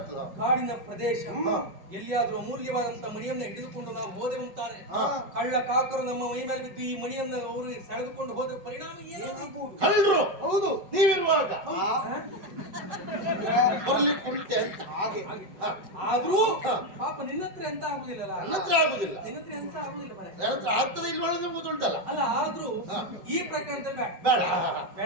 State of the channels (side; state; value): left; late; 5.2 ms